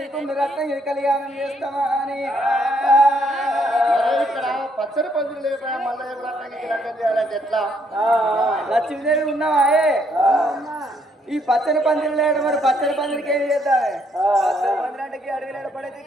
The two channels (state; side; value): normal; both; correlation 0.71